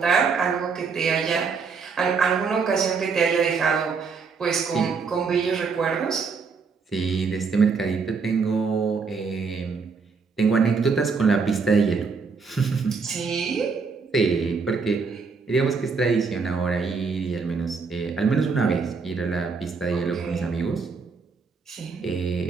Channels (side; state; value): left; quieter; 5.1 dB